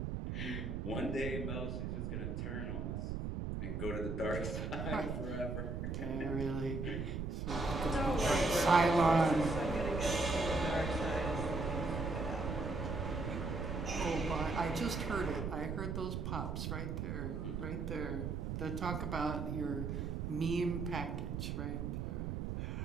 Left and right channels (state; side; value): noise; right; rumble, 3 dB below the sound